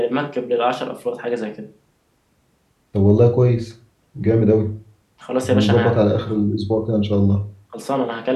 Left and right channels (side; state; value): both; identical; correlation 1.00